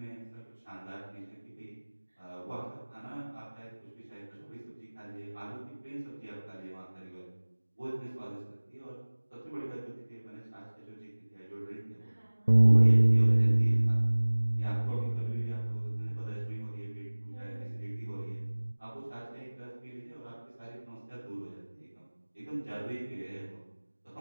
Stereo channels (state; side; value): inverted; both; correlation -1.00